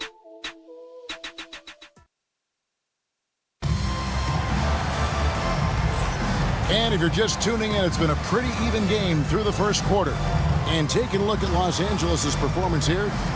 And if you're just tuning in, it's been a pretty even game through the first quarter. And taking a look at Los Angeles' performance here,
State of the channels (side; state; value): both; identical; correlation 1.00